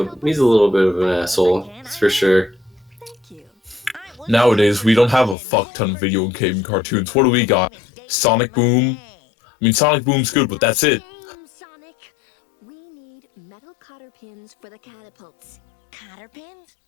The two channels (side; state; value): right; drops out; at 5.4 s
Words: he's a little bit of an asshole, that's for sure. Thank you. Nowadays, we don't have a fuck ton of video game cartoons. What do we got? Sonic Boom? I mean, Sonic Boom's good, but that's it. Sonic. We need metal cotter pins for the catapults. Cotter pins?